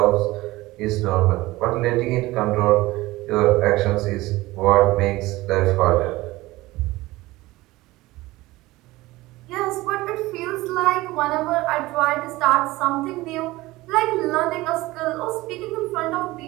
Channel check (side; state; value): left; quieter; 19.1 dB